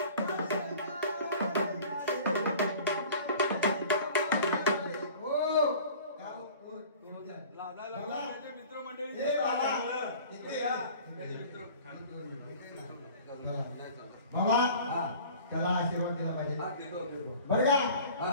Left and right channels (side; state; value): both; inverted; correlation -0.45